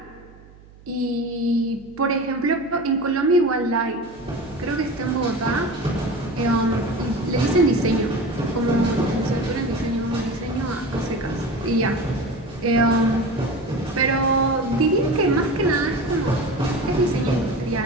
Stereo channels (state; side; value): noise; right; hum, 23 dB below the sound